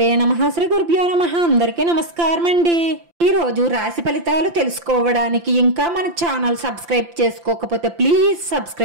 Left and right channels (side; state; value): left; late; 5.8 ms